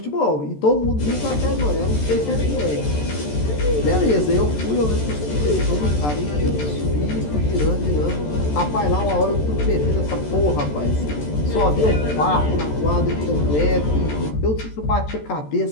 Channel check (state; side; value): late; right; 14 ms